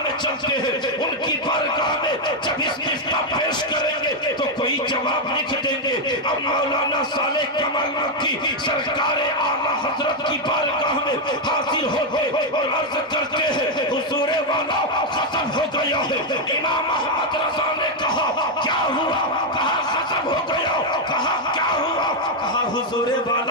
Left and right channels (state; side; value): normal; both; correlation 0.02